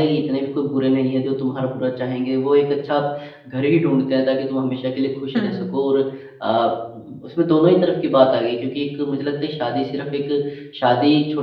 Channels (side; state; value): both; identical; correlation 1.00